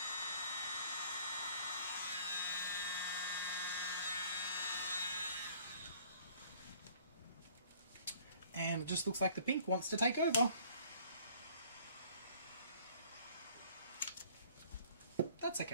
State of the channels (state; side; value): inverted; both; correlation -0.55